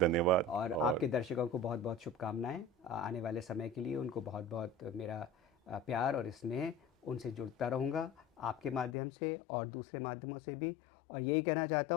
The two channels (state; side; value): drops out; right; at 9.0 s